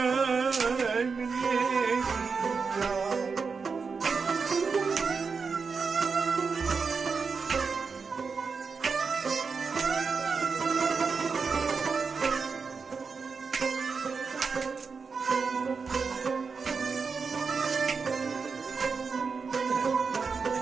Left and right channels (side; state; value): left; quieter; 5.1 dB